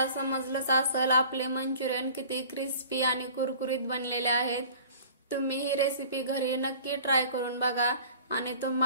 समजलंच असेल आपले मंचुरियन किती क्रिस्पी आणि कुरकुरीत बनलेले आहेत। तुम्ही ही रेसिपी घरी नक्की ट्राय करून बघा आणि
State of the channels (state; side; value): inverted; both; correlation -0.46